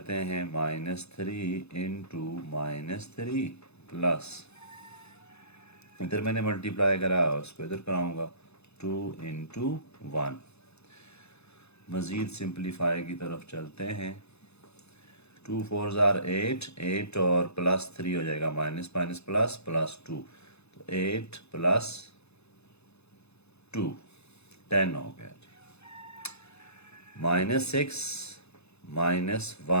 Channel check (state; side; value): late; right; 0.80 ms